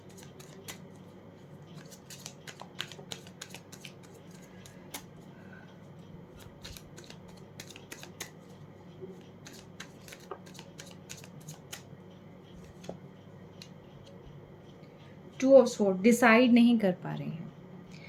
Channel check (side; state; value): both; identical; correlation 1.00